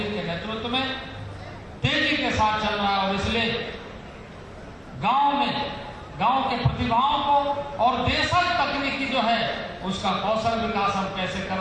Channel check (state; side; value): identical; both; correlation 1.00